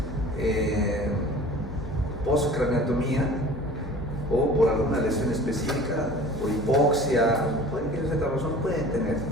postcraneotomía o por alguna lesión específica, por hipoxia, por cualquier otra razón, pueden tener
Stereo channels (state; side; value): normal; both; correlation 0.44